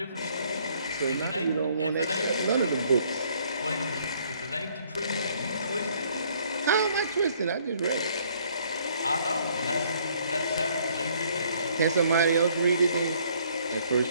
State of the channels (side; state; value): both; inverted; correlation -0.63